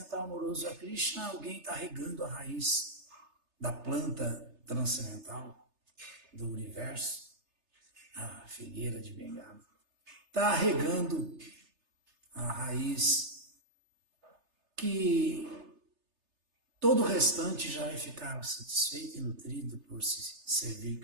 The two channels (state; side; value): late; left; 3.3 ms